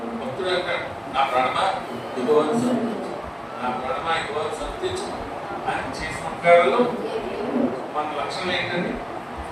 భక్తుడు అంటాడు, నా ప్రాణమా యెహోవాను స్తుతించు, నా ప్రాణమా యెహోవాను స్తుతించు. ఆయన చేసిన ఉపకారాలు మన లక్షణం ఏంటండి?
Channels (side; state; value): both; identical; correlation 1.00